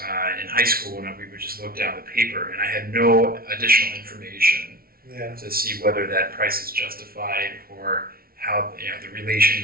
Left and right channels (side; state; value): left; late; 0.43 ms